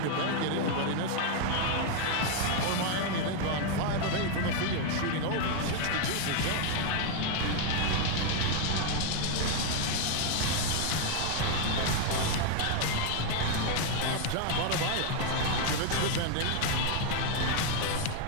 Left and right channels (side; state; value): both; different; correlation 0.01